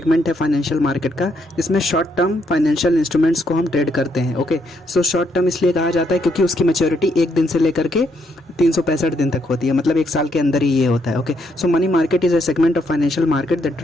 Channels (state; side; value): normal; both; correlation 0.75